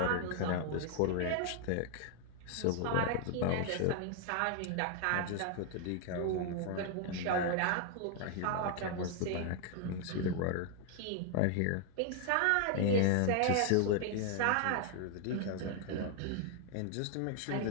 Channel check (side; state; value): both; different; correlation 0.00